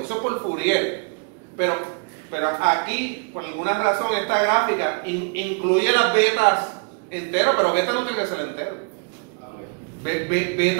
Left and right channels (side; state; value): left; quieter; 38.5 dB